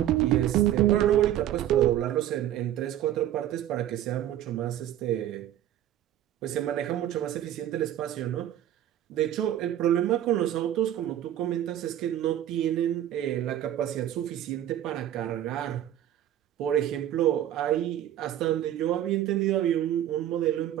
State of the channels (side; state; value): left; quieter; 11.9 dB